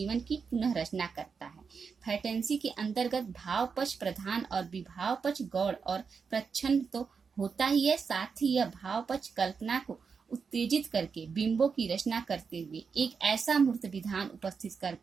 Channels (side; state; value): left; quieter; 5.6 dB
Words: की पुनः रचना करता है। फैंटेसी के अंतर्गत भाव पक्ष प्रधान और विभाव पक्ष गौण और प्रच्छन्न तो होता ही है, साथ ही यह भाव पक्ष कल्पना को उत्तेजित करके बिंबों की रचना करते हुए एक ऐसा मूर्त विधान उपस्थित